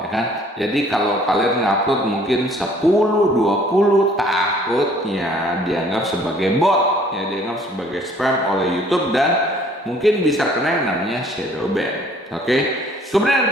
ya kan. Jadi kalau kalian ngupload mungkin 10, 20, takutnya dianggap sebagai bot ya, dianggap sebagai spam oleh YouTube dan mungkin bisa kena yang namanya shadow ban. Oke, kemudian yang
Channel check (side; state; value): both; normal; correlation 0.57